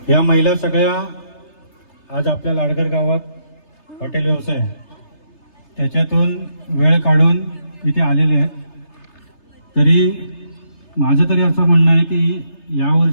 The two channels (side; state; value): right; late; 3.3 ms